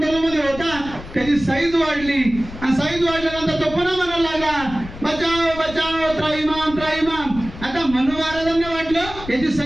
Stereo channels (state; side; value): noise; left; rumble, 13 dB below the sound